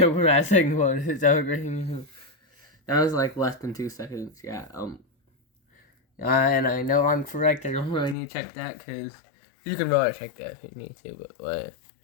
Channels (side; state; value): right; drops out; at 8.2 s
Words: what we're at, second one. Is that great? That was like less than 2 seconds, yeah, and I know I'm correct. I don't really need to check that because you can really check that if you need to. But what?